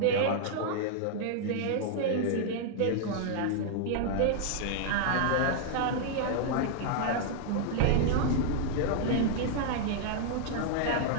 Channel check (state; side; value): different; both; correlation -0.01